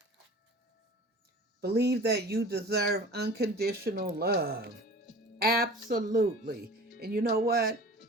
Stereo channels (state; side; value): normal; both; correlation 0.41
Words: Believe that you deserve unconditional love. Absolutely. And you know what?